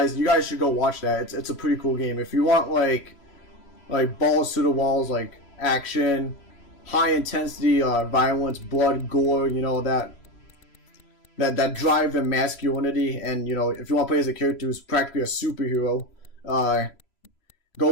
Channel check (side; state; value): right; late; 3.0 ms